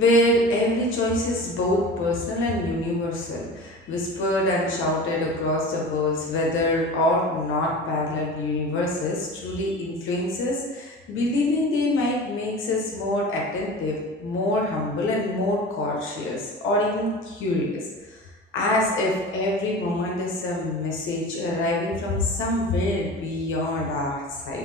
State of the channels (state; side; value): normal; both; correlation 0.35